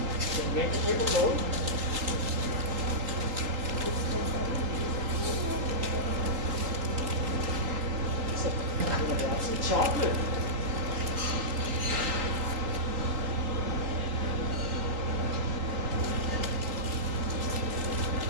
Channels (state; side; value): late; left; 3.8 ms